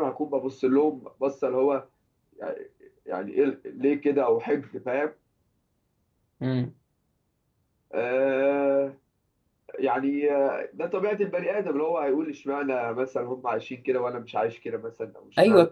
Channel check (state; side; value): identical; both; correlation 1.00